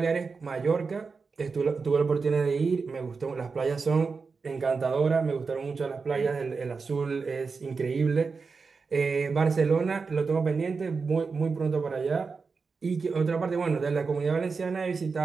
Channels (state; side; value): quieter; left; 4.8 dB